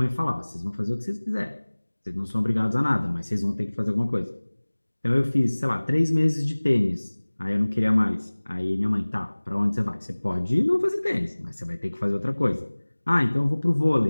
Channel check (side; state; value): both; inverted; correlation -1.00